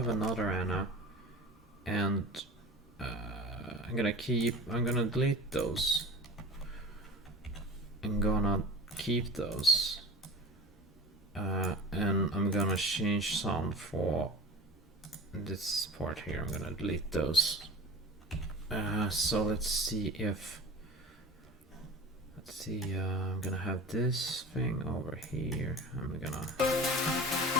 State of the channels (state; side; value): normal; both; correlation 0.35